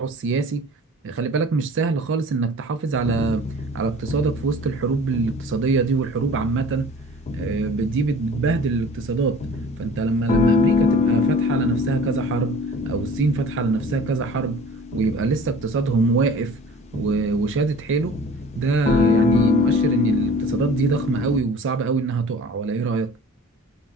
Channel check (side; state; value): both; normal; correlation 0.44